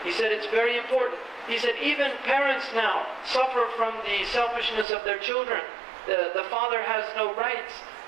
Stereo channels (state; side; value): drops out; left; at 4.9 s